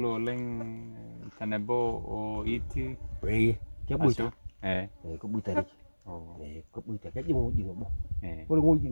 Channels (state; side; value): inverted; both; correlation -1.00